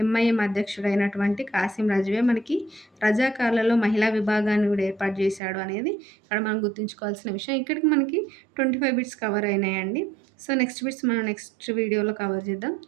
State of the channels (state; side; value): drops out; left; at 5.4 s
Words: ఎంఐఎం అధ్యక్షుడైనటువంటి కాసిం రజ్వీయే మనకి రజాకార్లలో మహిళా విభాగాన్ని గూడా ఏర్పాటు చేశాడు అనేది ఇక్కడ మనం గుర్తుంచుకోవాల్సిన విషయం. ఇక్కడికి మనకి 25 బిట్స్ కవర్ అయినాయండి. సో, నెక్స్ట్ బిట్స్ మనం నెక్స్ట్ వీడియోలో కవర్ చేద్దాం.